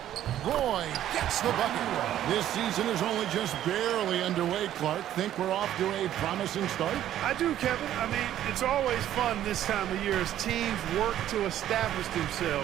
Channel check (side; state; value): left; quieter; 11.9 dB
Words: Roy gets the bucket. This season is only just barely underway, Clark. Think we're off to a promising start? I do, Kevin. I mean, it's always fun this time of year as teams work to establish